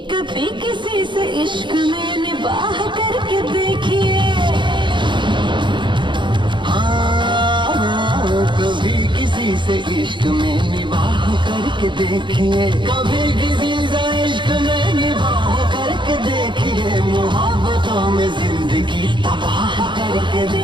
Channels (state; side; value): late; left; 0.23 ms